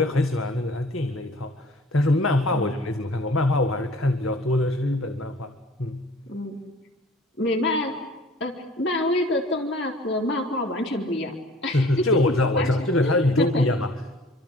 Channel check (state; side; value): normal; both; correlation 0.50